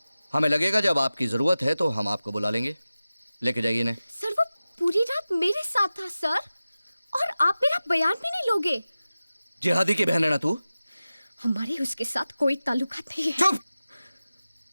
हमें लगेगा जब आपकी जरूरत है तो हम आपको बुला लेंगे। लेके जाइए इन्हें। सर वो पूरी रात मेरे साथ था सर, और आप मेरा बयान भी नहीं लोगे? जिहादी की बहन है ना तू? हमारे उसके साथ कोई ताल्लुकात नहीं है। चुप!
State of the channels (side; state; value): both; inverted; correlation -0.95